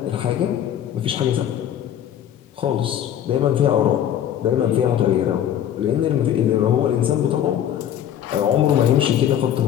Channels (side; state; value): right; quieter; 10.3 dB